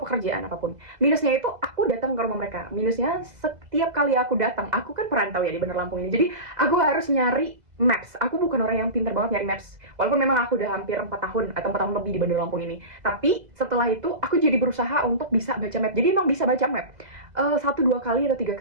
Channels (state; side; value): late; left; 2.0 ms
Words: apapun. Minusnya itu aku datang ke rumah mereka. Minusnya setiap kali aku datang, aku kan perantau ya di Bandar Lampung ini. Jadi aku harus nyari maps. Aku bukan orang yang pintar banget nyari maps. Walaupun memang aku udah hampir 4 tahun atau 4 tahun lebih di Bandar Lampung ini. Tapi setelah itu aku jadi berusaha untuk bisa baca map. Jadi emang bisa baca map. 1-2 kali atau 3